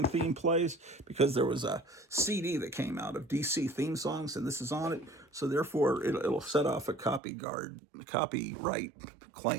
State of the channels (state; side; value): drops out; left; at 7.2 s